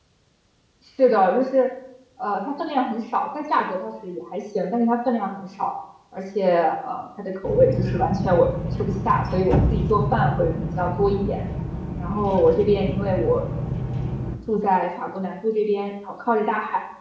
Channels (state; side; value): identical; both; correlation 1.00